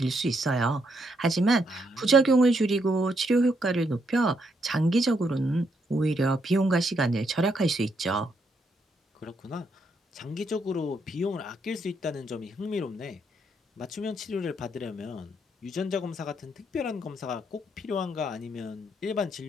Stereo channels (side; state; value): both; normal; correlation 0.76